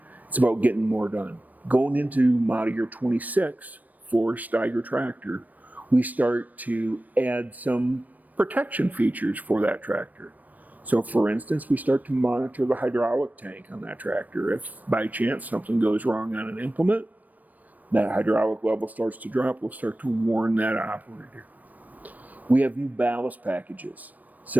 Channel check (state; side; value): late; left; 0.080 ms